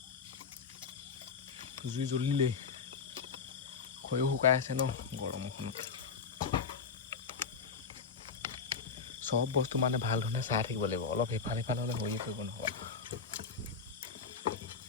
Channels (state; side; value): quieter; right; 5.5 dB